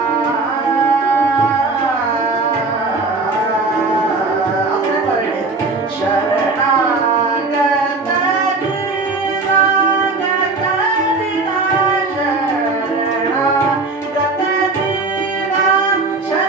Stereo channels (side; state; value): left; quieter; 3.7 dB